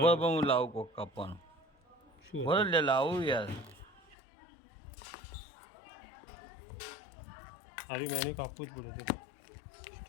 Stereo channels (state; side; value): drops out; right; at 4.2 s